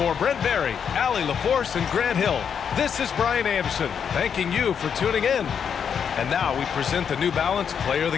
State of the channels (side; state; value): right; quieter; 7.4 dB